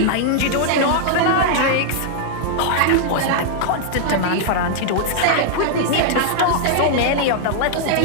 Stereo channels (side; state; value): both; different; correlation -0.01